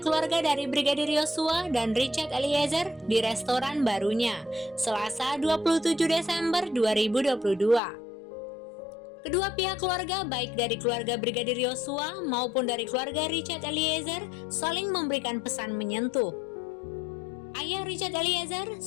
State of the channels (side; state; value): right; drops out; at 7.8 s